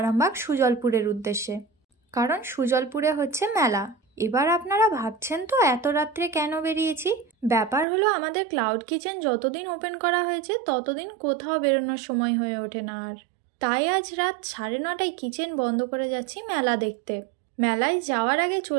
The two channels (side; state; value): left; drops out; at 7.9 s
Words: সুজলপুরের উদ্দেশ্যে, কারণ সুজলপুরে হচ্ছে মেলা। এবার আপনারা ভাবছেন তো এত রাত্রে কেন বেরিয়েছি। ব্যাপার হলো আমাদের ক্লাউড কিচেন যতদিন ওপেন করা হয়েছে ততদিন কোথাও বেরোনোর সময় হয়ে ওঠে না আর। তাই আজ রাত 9:30টায় কিচেন বন্ধ করে যাচ্ছি মেলা দেখতে। মেলায় যাওয়ার আগে